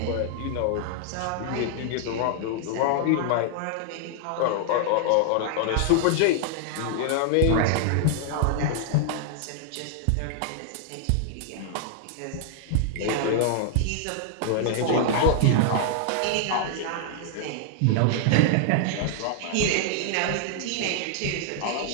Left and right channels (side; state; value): both; different; correlation -0.01